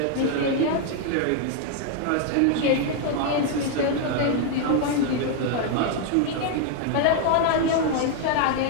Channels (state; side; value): different; both; correlation 0.00